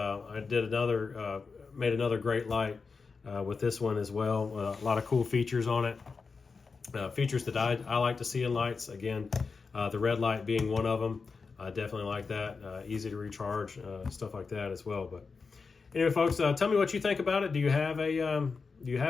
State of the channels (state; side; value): quieter; right; 4.8 dB